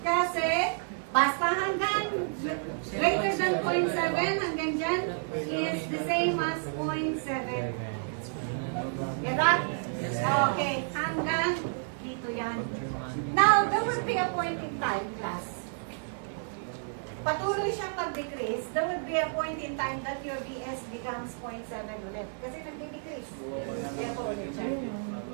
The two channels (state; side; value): silent; left; 55 dB below the other